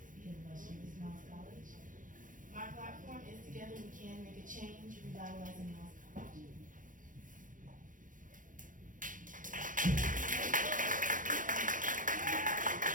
the illustrious Miles College. My platform is Together We Can Make a Change, Revitalizing Miles College.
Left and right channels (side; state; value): left; late; 0.38 ms